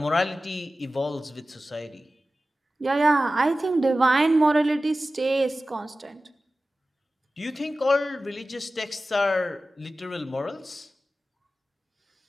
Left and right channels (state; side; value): normal; both; correlation 0.95